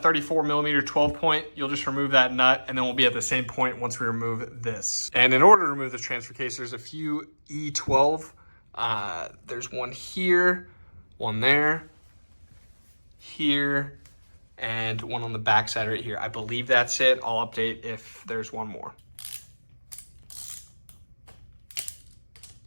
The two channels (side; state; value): both; inverted; correlation -1.00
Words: 34mm 12-point. You'll just remove that nut, and then we'll be at the same point once we remove this. And in order to remove the transfer case, there's a few E12. There's one here, one there, here, and one on the back side right here. I believe that's it. I'll update if there's one more.